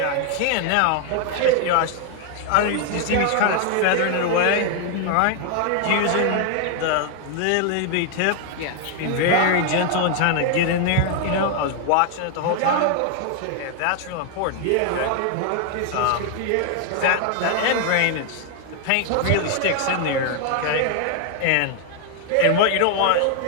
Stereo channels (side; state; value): both; different; correlation 0.00